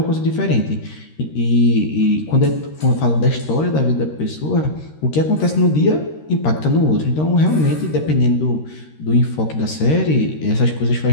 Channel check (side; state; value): right; late; 13 ms